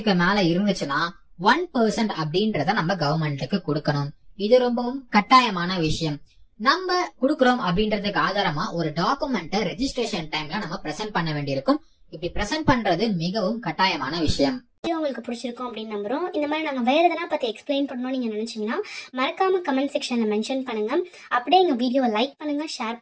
மேல இருந்துச்சுன்னா 1% அப்படின்றத நம்ம கவர்மெண்ட்டுக்கு கொடுக்கணும். இது ரொம்பவும் கட்டாயமான விஷயம். நம்ம குடுக்கறோம் அப்படின்றதுக்கு ஆதாரமா ஒரு டாக்குமெண்ட்டை ரெஜிஸ்ட்ரேஷன் டைம்ல நம்ம பிரசன்ட் பண்ண வேண்டியிருக்கும். இப்படி பிரசன்ட் பண்றது மிகவும் கட்டாயமான விஷயம். உங்களுக்கு பிடிச்சிருக்கும் அப்படின்னு நம்புறோம். இந்த மாதிரி நாங்கள் வேறு எதனா பற்றி எக்ஸ்பிளைன் பண்ணணும்னு நீங்கள் நினச்சிங்கன்னா மறக்காம கமெண்ட் செக்ஷனில் மென்ஷன் பண்ணுங்கள். அப்படியே எங்கள் வீடியோவை லைக் பண்ணுங்கள், ஷேர்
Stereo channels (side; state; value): both; identical; correlation 1.00